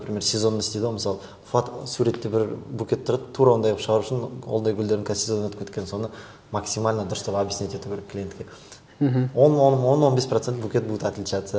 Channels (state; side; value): identical; both; correlation 1.00